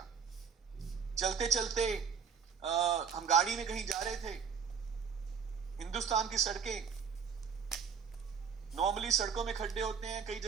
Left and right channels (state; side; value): quieter; left; 6.6 dB